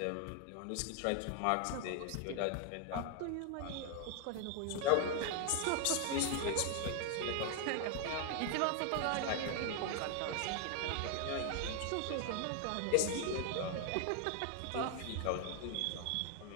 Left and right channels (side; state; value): both; different; correlation 0.00